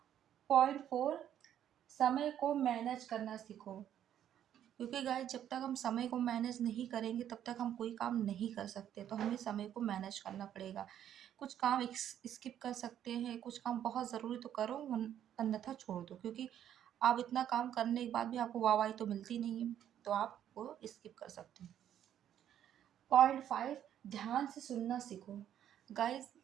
पॉइंट फोर, समय को मैनेज करना सीखो, क्योंकि गाइस जब तक हम समय को मैनेज नहीं करेंगे तब तक हम कोई काम नहीं कर सकते। तो हमें समय को मैनेज करना पड़ेगा। कुछ काम स्किप कर सकते हैं, कुछ काम बहुत ज़रूरी तो करो, अन्यथा छोड़ दो, क्योंकि आप इतना काम करने के बाद भी आपको वाहवाही तो मिलती नहीं है, तो आप वो स्किप कर सकते हैं। पॉइंट फाइव, ध्यान से सुनना सीखो। गाइस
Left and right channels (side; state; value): left; quieter; 10.4 dB